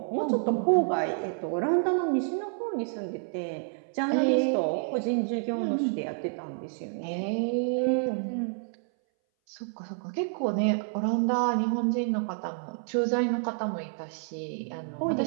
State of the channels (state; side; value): silent; left; 59 dB below the other